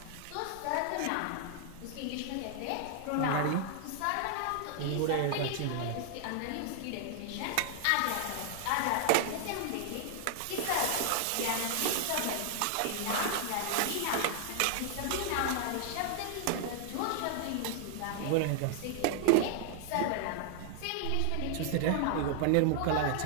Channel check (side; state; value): both; different; correlation 0.00